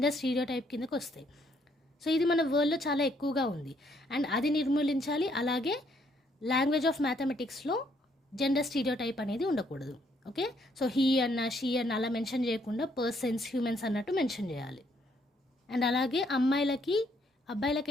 స్టీరియోటైప్ కిందకు వస్తాయి. సో ఇది మన వరల్డ్లో చాలా ఎక్కువగా ఉంది అండ్ అది నిర్మూలించాలి. అలాగే లాంగ్వేజ్ ఆఫ్ మ్యాథమెటిక్స్లో జెండర్ స్టీరియోటైప్ అనేది ఉండకూడదు. ఓకే, సో హీ అన్న, షీ అన్న అలా మెన్షన్ చేయకుండా పర్సన్స్, హ్యూమన్స్ అన్నట్టు మెన్షన్ చేయాలి. అండ్ అలాగే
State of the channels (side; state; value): both; normal; correlation 0.70